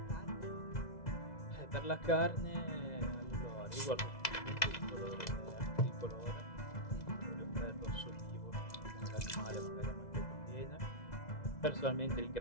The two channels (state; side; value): late; right; 2.0 ms